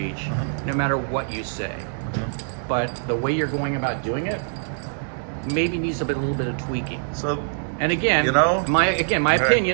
no matter what you say. But the way you're going about doing it maybe needs a little bit of tweaking. So, and again, my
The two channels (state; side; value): silent; left; digital silence